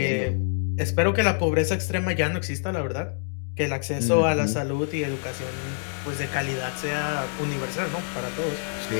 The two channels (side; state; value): right; silent; 61 dB below the other